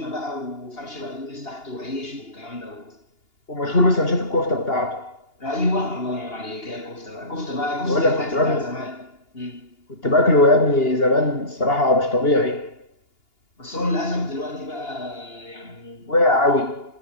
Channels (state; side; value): late; right; 2.8 ms